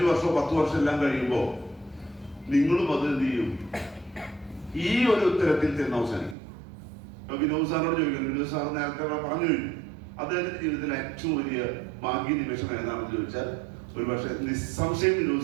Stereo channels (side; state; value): left; drops out; at 6.4 s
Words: വർഷമോ 10 വർഷം എല്ലാം കഴിയുമ്പോൾ നിങ്ങളും അത് എന്ത് ചെയ്യും, ഈ ഒരു ഉത്തരത്തിൽ ചെന്ന് അവസാനിക്കും. ഇപ്പൊ വിനോദ് സാറിനോട് ചോദിക്കണം, വിനോദ് സാർ നേരത്തെ പറഞ്ഞു കഴിഞ്ഞു, അദ്ദേഹത്തിന്റെ ജീവിതത്തിലെ ഏറ്റവും വലിയ ഭാഗ്യ നിമിഷം ഏതാണെന്ന് ചോദിച്ചാൽ ഒരു പക്ഷെ നിസ്സംശയം